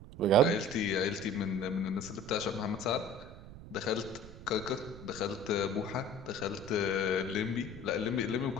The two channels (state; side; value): noise; right; rumble, 15 dB below the sound